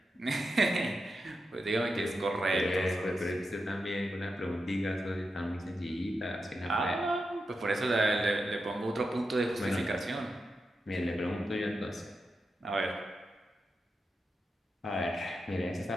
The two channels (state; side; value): normal; both; correlation 0.88